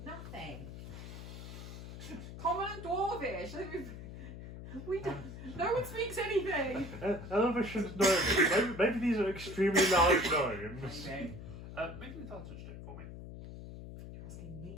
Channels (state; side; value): noise; left; hum, 11 dB below the sound